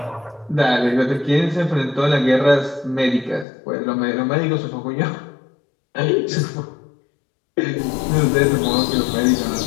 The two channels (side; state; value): right; drops out; at 3.5 s